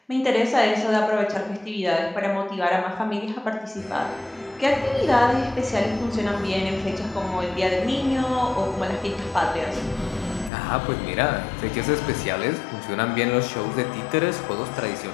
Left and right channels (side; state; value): right; drops out; at 10.5 s